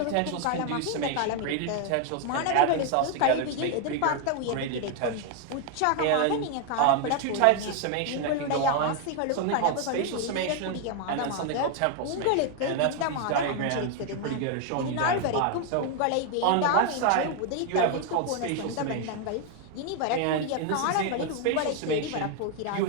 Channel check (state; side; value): different; both; correlation 0.01